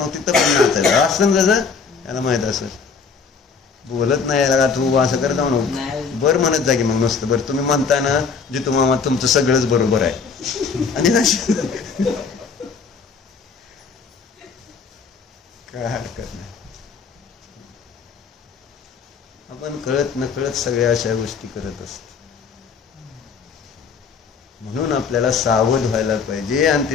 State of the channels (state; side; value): quieter; right; 5.4 dB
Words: पण नाचायचं असं कसं त्याला माहित असेल. बोलत नाही का तू असं करत म्हणून बरं म्हणत जा की मग नुसतं बरं. तुम्ही म्हणता ना जितू मामा तुमचं सगळंच बरोबर आहे आणि काय हरकत नाही. आपण कळत नकळत सगळ्या अशा गोष्टी करत असतो. म्हणून आपल्याला सावध व्हायला पाहिजे. आणि